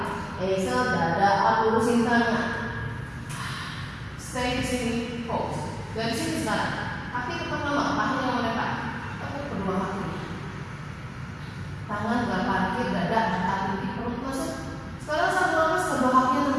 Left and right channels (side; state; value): both; identical; correlation 1.00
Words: exhale dada up lurusin tangan. Stay di sini, pause. Dari sini sekarang. Kaki tetap lama, kaki yang melekat. Tepuk kedua kaki. Tangan gak parkir, dada angkat di perut masuk. Sekarang satu nafas kedua kaki